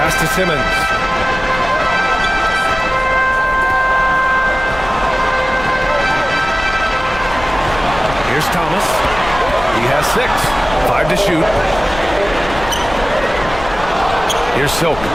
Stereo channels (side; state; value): left; noise; rumble, 12 dB below the sound